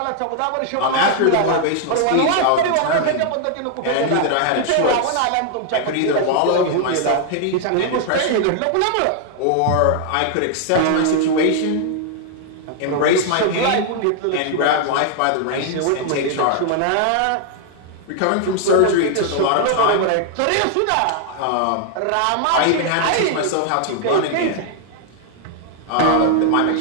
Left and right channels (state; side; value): different; both; correlation 0.00